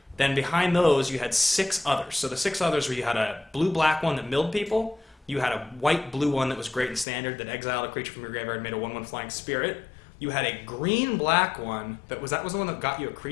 Then behind those, you had 6 others. So the 6 others were you had a blue-black one that milled people. You had a white-blue one that was great in standard that exiled a creature from your graveyard and made a 1/1 flying spirit. You had a green-black one that was the one that got you a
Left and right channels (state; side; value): drops out; right; at 7.1 s